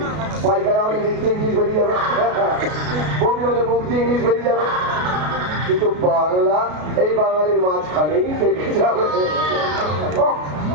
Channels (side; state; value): left; late; 33 ms